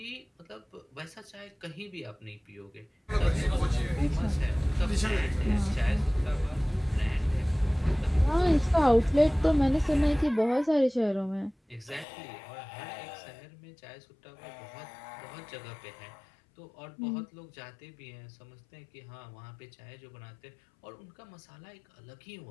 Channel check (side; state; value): right; drops out; at 12.1 s